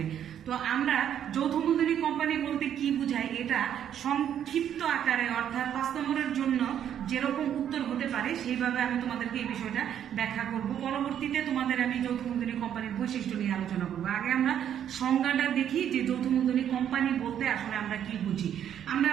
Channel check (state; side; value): quieter; left; 9.7 dB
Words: তো আমরা যৌথ মূলধনী কোম্পানি বলতে কি বুঝাই এটা সংক্ষিপ্ত আকারে অর্থাৎ 5 নম্বরের জন্য যেরকম উত্তর হতে পারে সেইভাবে আমি তোমাদেরকে এই বিষয়টা ব্যাখ্যা করব। পরবর্তীতে তোমাদের আমি যৌথ মূলধনী কোম্পানির বৈশিষ্ট্য নিয়ে আলোচনা করবো। আগে আমরা সংজ্ঞাটা দেখি যে যৌথ মূলধনী কোম্পানি বলতে আসলে আমরা কি বুঝি। আমরা